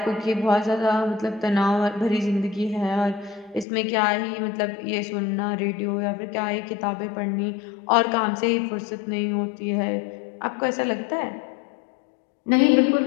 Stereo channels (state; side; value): drops out; right; at 3.7 s